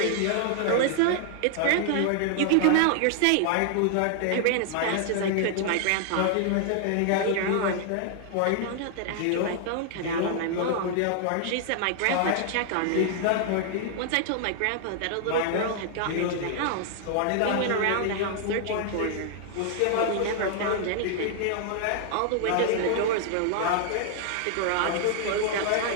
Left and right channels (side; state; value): both; different; correlation 0.00